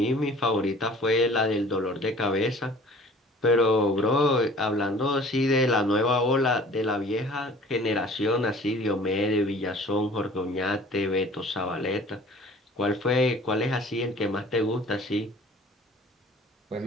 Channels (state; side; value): normal; both; correlation 0.49